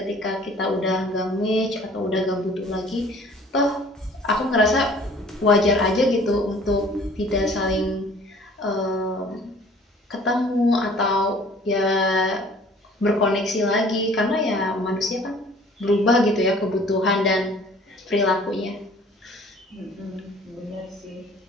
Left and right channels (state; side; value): normal; both; correlation 0.52